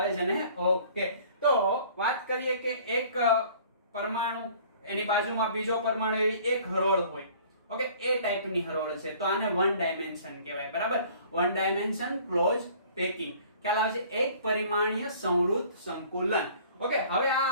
છે ને? ઓકે, તો વાત કરીએ કે એક પરમાણુ, એની બાજુમાં બીજો પરમાણુ, એવી એક હરોળ હોય. ઓકે, એ ટાઈપની હરોળ છે, તો આને વન ડાયમેન્શન કહેવાય. બરાબર, વન ડાયમેન્શન ક્લોઝ પેકિંગ. ખ્યાલ આવે છે? એક પરિમાણીય સંવૃત સંકુલન. ઓકે, હવે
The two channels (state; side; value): inverted; both; correlation -0.51